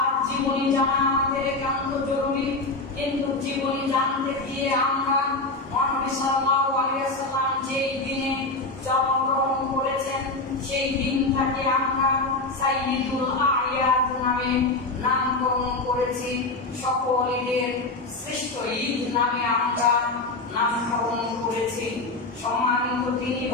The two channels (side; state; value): right; quieter; 3.3 dB